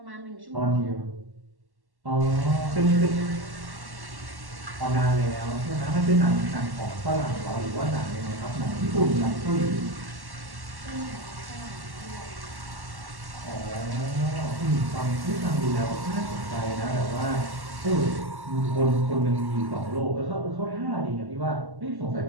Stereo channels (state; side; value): late; left; 1.1 ms